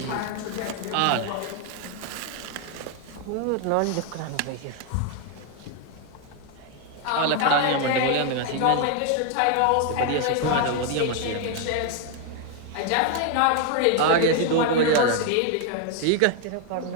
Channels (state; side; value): different; both; correlation 0.00